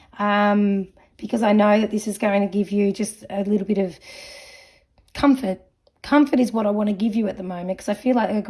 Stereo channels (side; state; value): both; identical; correlation 1.00